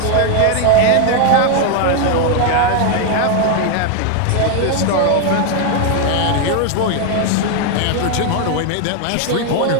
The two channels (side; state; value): both; different; correlation 0.00